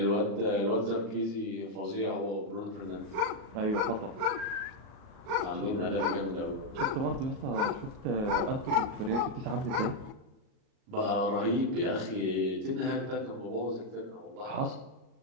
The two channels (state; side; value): late; left; 37 ms